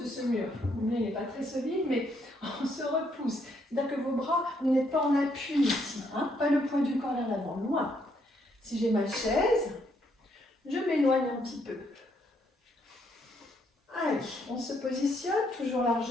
de ce mur. Le mien n'est pas très solide, mais on se repousse. C'est-à-dire que vos bras, vous n'êtes pas en appui ici, hein, pas le poids du corps vers l'avant, loin. Si j'ai ma chaise, je m'éloigne un petit peu. Allez, on se positionne, toujours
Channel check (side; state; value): both; normal; correlation 0.72